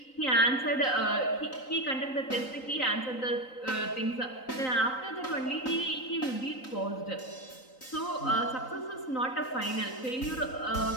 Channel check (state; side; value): late; right; 3.9 ms